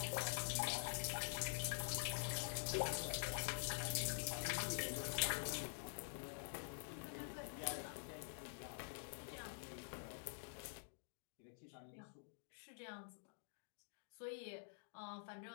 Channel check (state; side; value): silent; right; digital silence